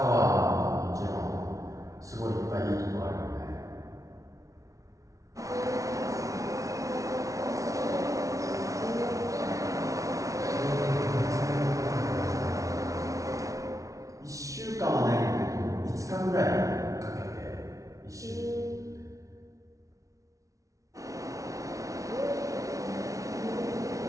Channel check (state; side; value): late; left; 0.16 ms